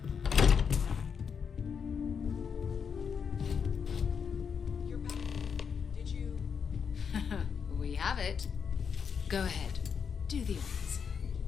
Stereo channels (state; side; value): quieter; right; 6.6 dB